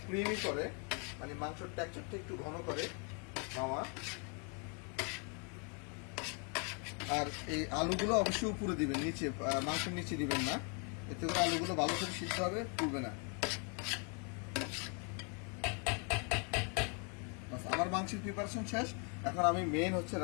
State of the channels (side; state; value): right; quieter; 37.3 dB